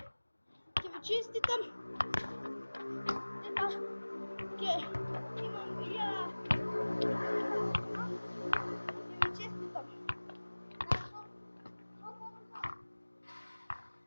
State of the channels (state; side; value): inverted; both; correlation -1.00